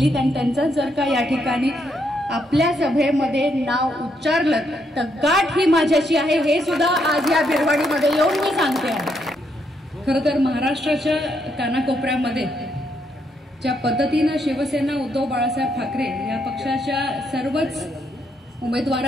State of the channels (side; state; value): both; normal; correlation 0.76